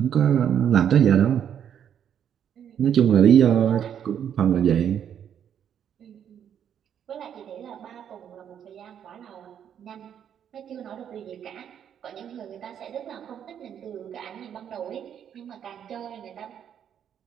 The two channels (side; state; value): left; quieter; 9.0 dB